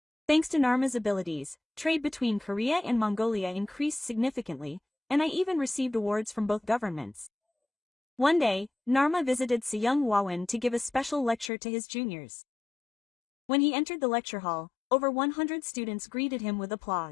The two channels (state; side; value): drops out; right; at 11.5 s